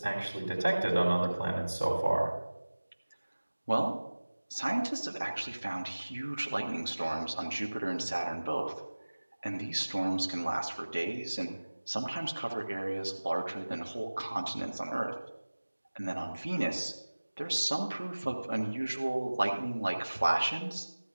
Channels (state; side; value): inverted; both; correlation -1.00